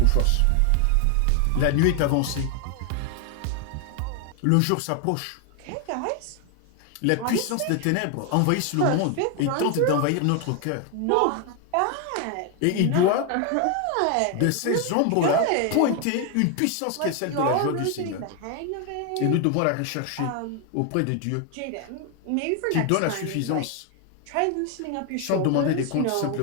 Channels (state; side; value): different; both; correlation 0.01